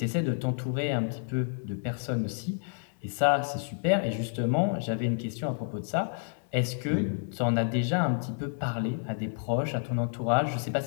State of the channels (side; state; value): right; silent; digital silence